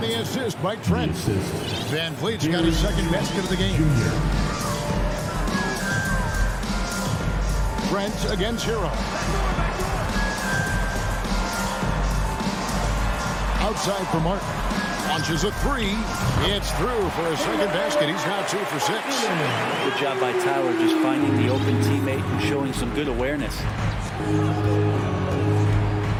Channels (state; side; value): identical; both; correlation 1.00